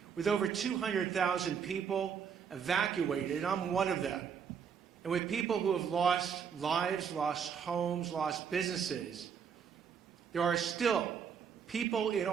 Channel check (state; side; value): quieter; left; 7.0 dB